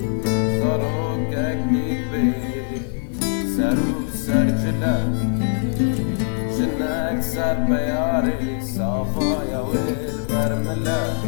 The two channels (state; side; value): silent; right; digital silence